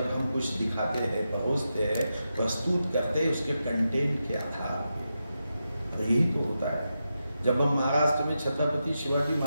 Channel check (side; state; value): both; inverted; correlation -0.88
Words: हम कुछ दिखाते हैं, परोसते हैं, प्रस्तुत करते हैं उसके कंटेंट के आधार पर। यही तो होता है। जब हम महाराष्ट्र में छत्रपति शिवाजी